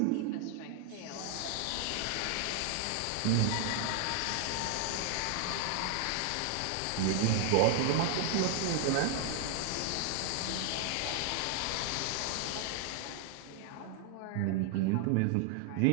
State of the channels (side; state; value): both; different; correlation 0.00